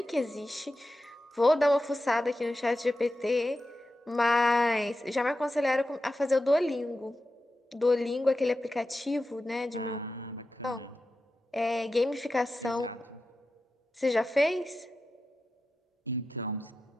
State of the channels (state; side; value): normal; both; correlation 0.91